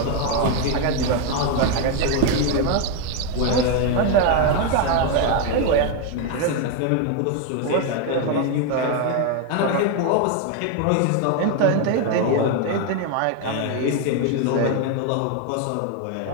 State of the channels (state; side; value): different; both; correlation 0.01